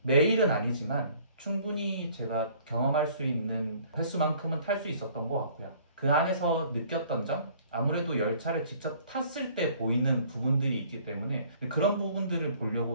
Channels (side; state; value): both; inverted; correlation -0.56